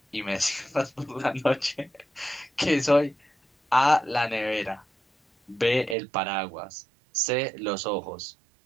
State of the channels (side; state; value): left; drops out; at 6.0 s